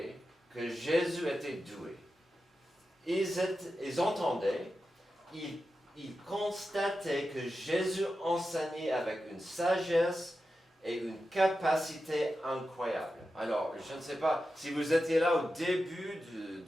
que Jésus était doué. Ils entendaient, ils constataient que Jésus enseignait avec une sagesse et une capacité incroyable. Alors, je ne sais pas, si vous étiez là au début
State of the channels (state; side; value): normal; both; correlation 0.91